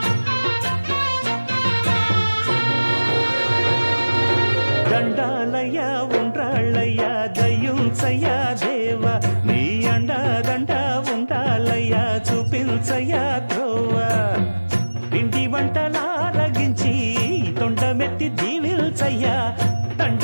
దండాలయ్య ఉండ్రాళ్ళయ్య దయ్యుంచయ్య దేవ నీ అండ దండ ఉండాలయ్య చూపించయ్య త్రోవ పిండి వంటలారగించి తొండమెత్తి దీవిల్చయ్య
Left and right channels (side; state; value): both; inverted; correlation -1.00